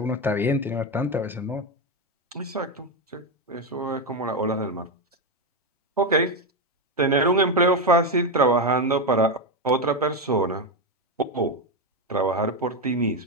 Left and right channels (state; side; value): normal; both; correlation 0.09